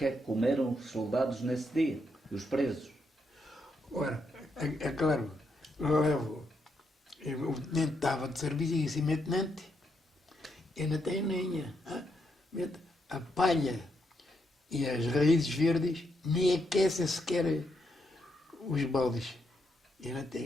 é que comeram os soldados nesse dia? Os presos? Ora, é claro, o tenente estava de serviço e disse, meu tenente, eu não tenho lenha. A palha e as raízes verdes nem aquecem sequer os baldes. Eu não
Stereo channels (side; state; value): both; normal; correlation 0.79